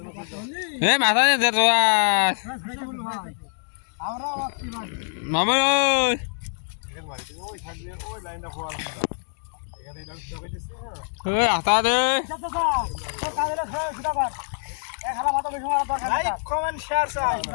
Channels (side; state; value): right; silent; digital silence